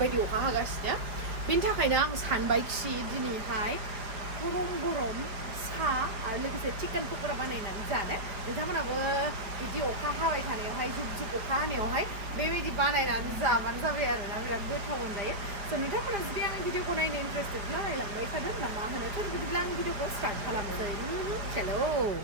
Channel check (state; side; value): late; left; 4.9 ms